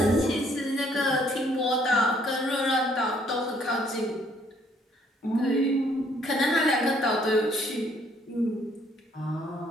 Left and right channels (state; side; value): normal; both; correlation 0.65